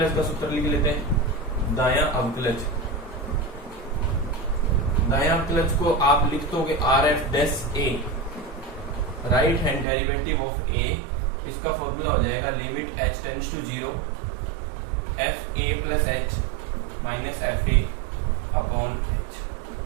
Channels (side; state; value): left; drops out; at 9.9 s